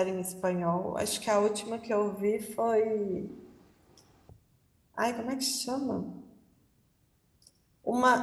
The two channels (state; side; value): identical; both; correlation 1.00